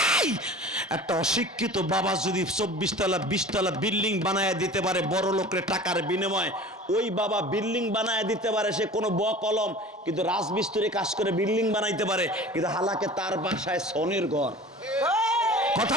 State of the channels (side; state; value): both; normal; correlation 0.40